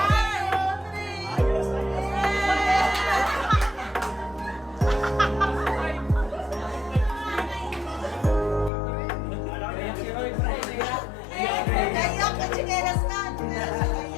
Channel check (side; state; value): right; drops out; at 8.7 s